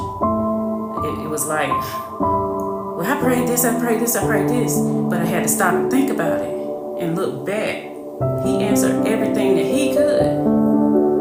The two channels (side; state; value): both; identical; correlation 1.00